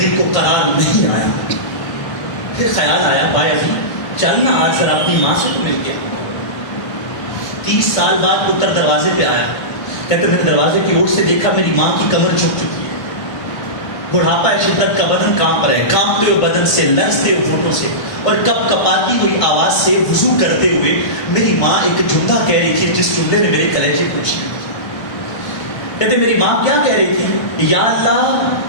دل کو قرار نہیں آیا. پھر خیال آیا بھائی چل نا آج ذرا اپنی ماں سے تو مل کے. 30 سال بعد پتر دروازے پہ آیا, کہتے میں نے دروازے کی اور سے دیکھا میری ماں کی کمر جھک چکی ہے, بڑھاپا ہے, شدت کا بدن کانپ رہا ہے, کانپتے ہوئے بدن سے, لرزتے ہوئے ہونٹوں سے اور کپ کپاتی ہوئی آواز سے وضو کرتے ہوئے میری ماں ایک جملہ کہہ رہی تھی جس جملے نے میرے کلیجے کو چھین دیا. کہتے میری ماں کیا کہہ رہی تھی, یا اللہ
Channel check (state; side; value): late; right; 1.5 ms